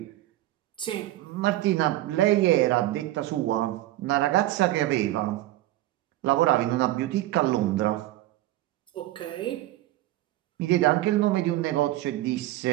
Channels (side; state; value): left; quieter; 15.7 dB